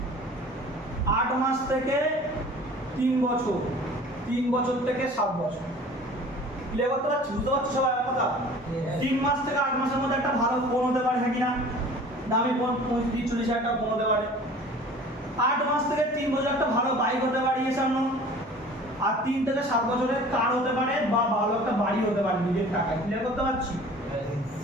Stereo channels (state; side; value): normal; both; correlation 0.45